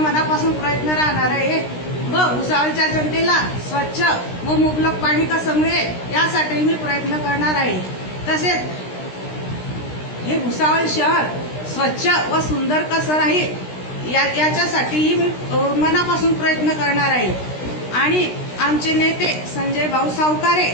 प्रयत्न राहणार आहे व भुसावळच्या जनतेला स्वच्छ व मुबलक पाणी कसं मिळेल यासाठी मी प्रयत्न करणार आहे। तसेच हे भुसावळ शहर स्वच्छ व सुंदर कसं राहील याच्यासाठीही मी मनापासून प्रयत्न करणार आहे। आणि आमचे नेते संजय भाऊ सावकारे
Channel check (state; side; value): late; right; 16 ms